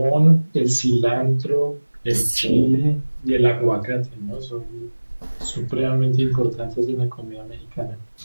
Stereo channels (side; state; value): both; inverted; correlation -1.00